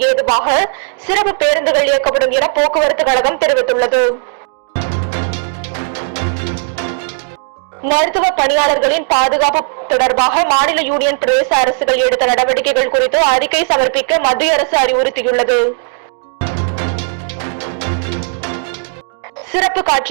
ஏதுவாக சிறப்பு பேருந்துகள் இயக்கப்படும் என போக்குவரத்து கழகம் தெரிவித்துள்ளது. மருத்துவ பணியாளர்களின் பாதுகாப்பு தொடர்பாக மாநில யூனியன் பிரதேச அரசுகள் எடுத்த நடவடிக்கைகள் குறித்து அறிக்கை சமர்ப்பிக்க மத்திய அரசு அறிவுறுத்தியுள்ளது. சிறப்பு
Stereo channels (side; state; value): left; silent; digital silence